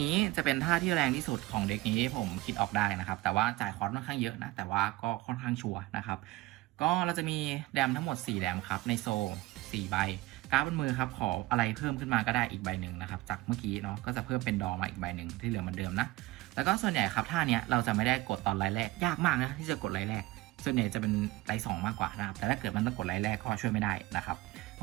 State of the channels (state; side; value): quieter; left; 19.2 dB